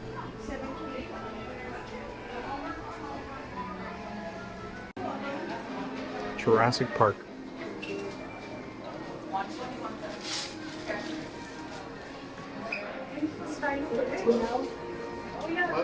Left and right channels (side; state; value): both; identical; correlation 1.00